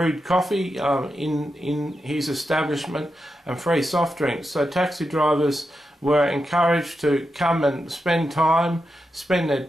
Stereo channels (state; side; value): normal; both; correlation 0.87